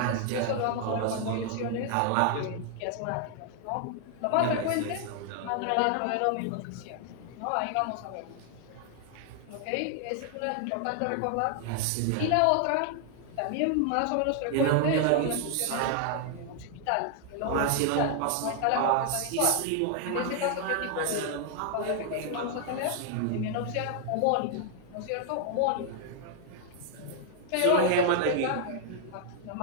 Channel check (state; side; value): different; both; correlation 0.00